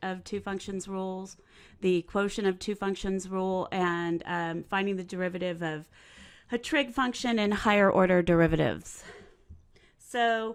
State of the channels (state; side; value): identical; both; correlation 1.00